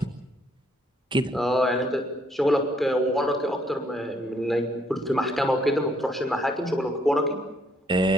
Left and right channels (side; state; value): both; normal; correlation 0.68